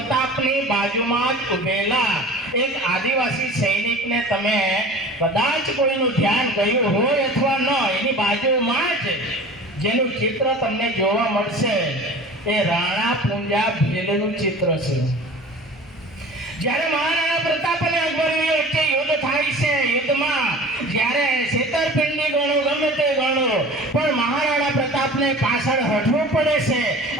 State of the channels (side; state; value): both; normal; correlation 0.40